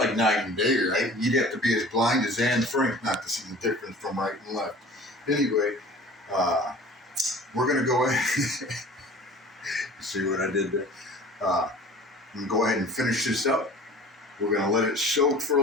night and day, right? You'd have to be as blind as Anne Frank not to see the difference from right and left. Anyway, we're going to go ahead. See what I did there? I'm going to go ahead and finish this up. We're going to let it soak for a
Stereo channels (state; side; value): normal; both; correlation 0.44